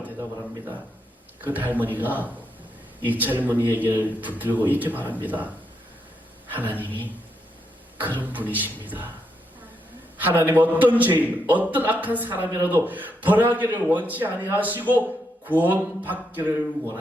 대답을 합니다. 그 할머니가 이 젊은이에게 붙들고 이렇게 말합니다. 하나님이 그런 분이십니다. 하나님 어떤 죄인, 어떤 악한 사람이라도 벌하기를 원치 아니하시고 구원받기를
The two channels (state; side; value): normal; both; correlation 0.80